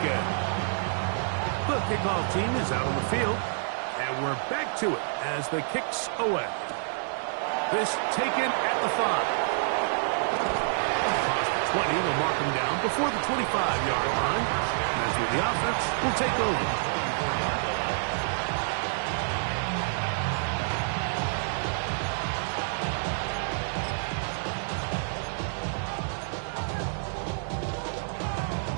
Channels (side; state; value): left; silent; 59 dB below the other